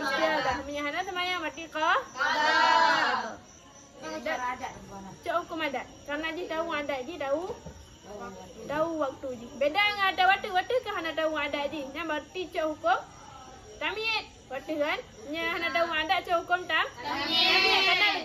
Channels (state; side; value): identical; both; correlation 1.00